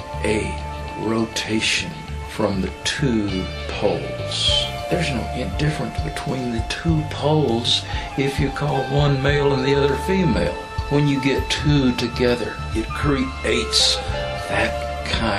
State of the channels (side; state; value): both; identical; correlation 1.00